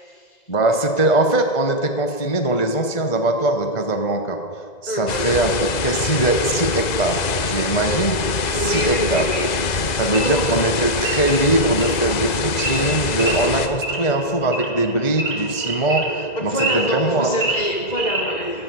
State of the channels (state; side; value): late; right; 2.0 ms